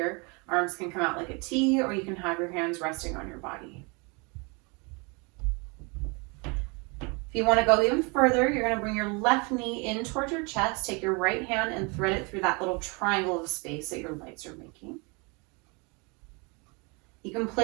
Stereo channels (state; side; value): quieter; left; 30.4 dB